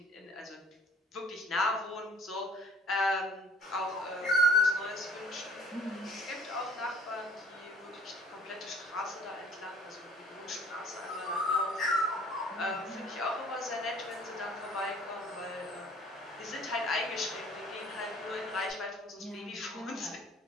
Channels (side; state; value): both; normal; correlation 0.52